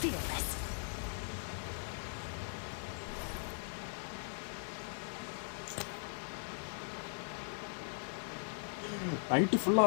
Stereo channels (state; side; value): silent; right; digital silence